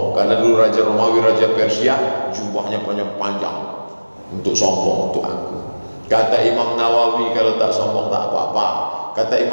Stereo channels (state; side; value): inverted; both; correlation -1.00